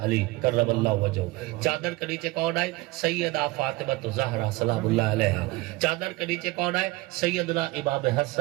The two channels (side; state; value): left; quieter; 20.9 dB